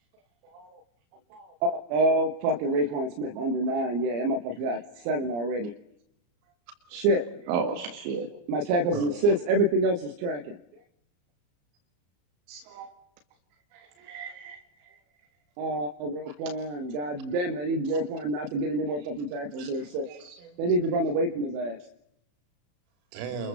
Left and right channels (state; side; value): late; left; 34 ms